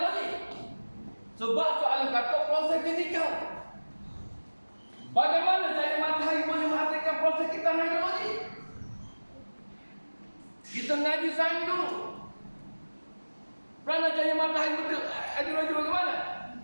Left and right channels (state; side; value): inverted; both; correlation -1.00